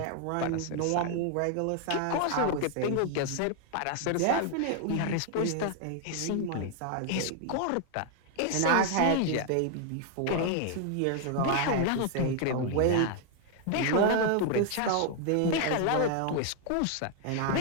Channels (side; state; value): both; different; correlation 0.00